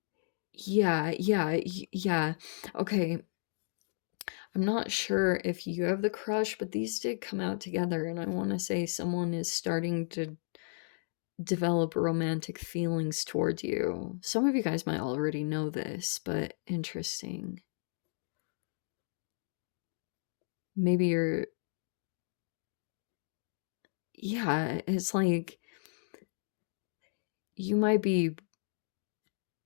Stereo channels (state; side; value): silent; right; digital silence